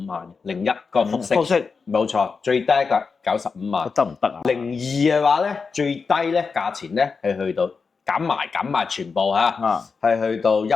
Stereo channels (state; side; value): quieter; right; 5.0 dB